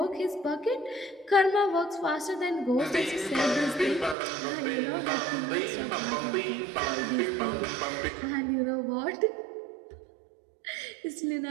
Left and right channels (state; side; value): drops out; left; at 4.2 s